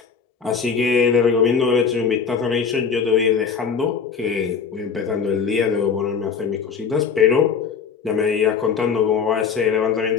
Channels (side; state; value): right; quieter; 6.1 dB